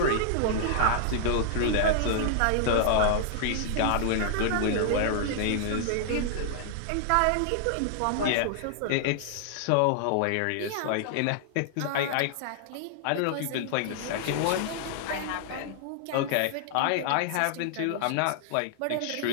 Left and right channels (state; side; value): different; both; correlation -0.01